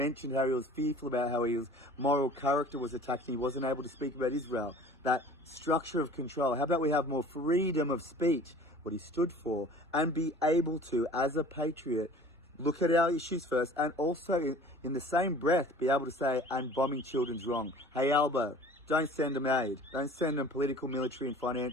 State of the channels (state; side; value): normal; both; correlation 0.45